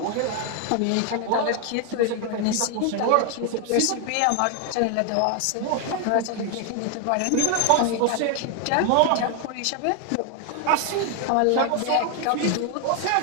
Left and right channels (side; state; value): both; different; correlation 0.01